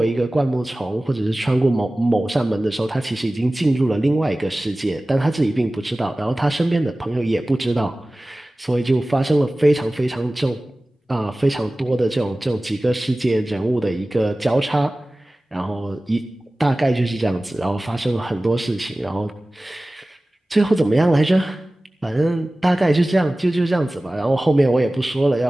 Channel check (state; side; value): normal; both; correlation 0.97